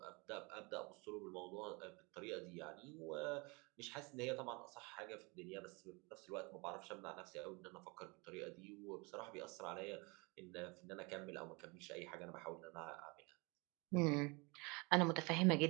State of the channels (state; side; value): quieter; left; 28.3 dB